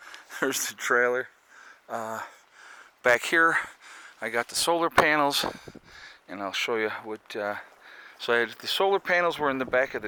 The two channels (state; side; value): identical; both; correlation 1.00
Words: there's the trailer. Back here, I got the solar panels, and I'll show you what... So the solar panels were in the back of